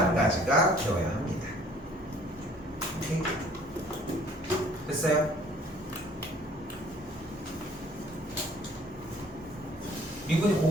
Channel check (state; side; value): normal; both; correlation 0.56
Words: 되어야 합니다. 오케이? 됐어요? 미분이